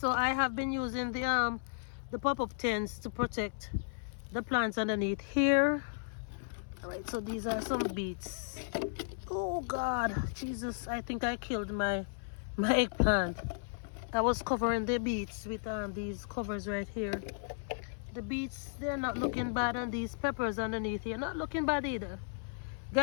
I have been using the pop-up tents to protect the plants underneath here. Alright, so these are some beets. Oh God, Jesus, I think I killed my eggplant. I was covering the beets with these covers right here. The beets, they're not looking bad, and these peppers underneath here not looking bad either.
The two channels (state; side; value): silent; right; 55 dB below the other